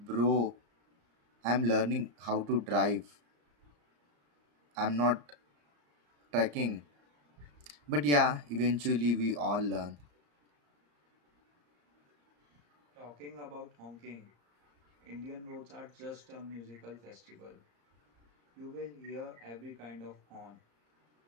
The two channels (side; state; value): left; late; 34 ms